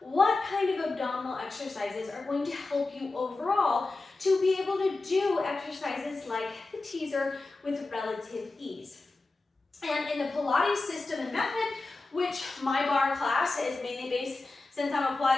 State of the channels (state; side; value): quieter; right; 3.4 dB